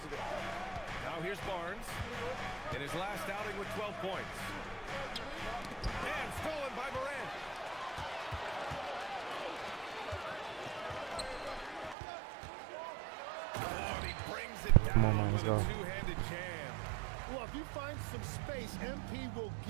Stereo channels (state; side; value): drops out; left; at 12.0 s